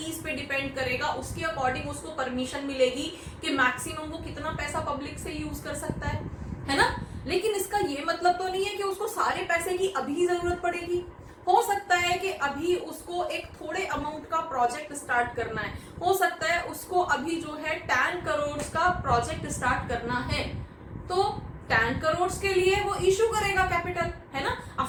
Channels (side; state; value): both; identical; correlation 1.00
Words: पे डिपेंड करेगा, उसके अकॉर्डिंग उसको परमिशन मिलेगी कि मैक्सिमम वो कितना पैसा पब्लिक से यूज कर सकता है ना। लेकिन इसका ये मतलब तो नहीं है कि उसको सारे पैसे की अभी जरूरत पड़ेगी। हो सकता है कि अभी उसको एक थोड़े अमाउंट का प्रोजेक्ट स्टार्ट करना है, हो सकता है उसको अभी जो है 10 करोड़ का प्रोजेक्ट स्टार्ट करना है, तो 10 करोड़ के लिए वो इशू करेगा कैपिटल, है ना।